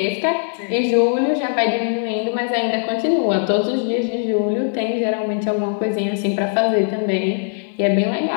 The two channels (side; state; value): right; silent; 65 dB below the other